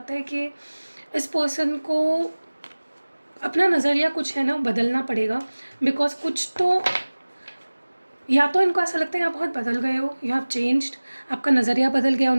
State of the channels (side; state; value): both; inverted; correlation -1.00